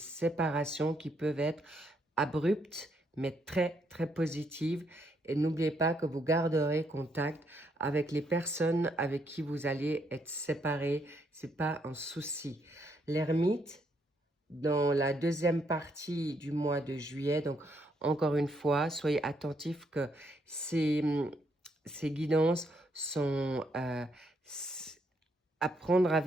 qui peuvent être abruptes, mais très, très positives. Et n'oubliez pas que vous garderez contact avec les personnes avec qui vous allez être séparés. Ce n'est pas un souci. L'ermite, dans la deuxième partie du mois de juillet, donc encore une fois, soyez attentifs que ces guidances sont à prendre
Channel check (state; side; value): normal; both; correlation 0.74